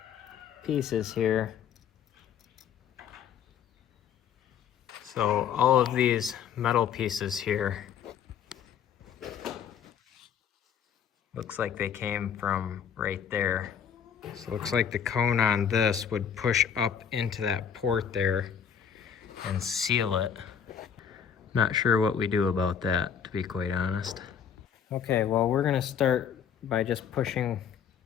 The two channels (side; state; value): right; quieter; 8.0 dB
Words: pieces here. So all of these metal pieces here, looks like they came from right there. So it looks like the cone on this would push up into that port there and seal it. Not sure what we do about that, to be quite honest. Okay, well, we're gonna start by just pushing